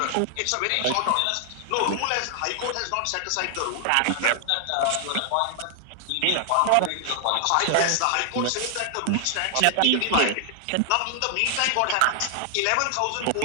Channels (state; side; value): different; both; correlation 0.00